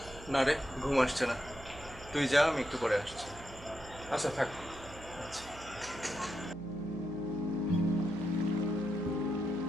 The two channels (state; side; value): noise; right; hum, 17 dB below the sound